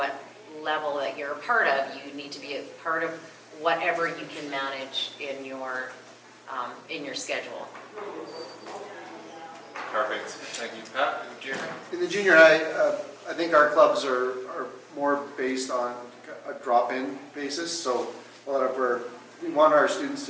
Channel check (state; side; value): identical; both; correlation 1.00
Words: level that you're a part of. You need to be a part of whatever you can manage in your schedule. Perfect. Thank you, Pat. In the junior high, I think our clubs are more based on a drop-in basis. So we want our students